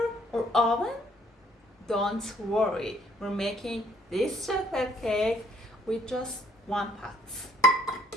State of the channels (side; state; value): both; normal; correlation 0.63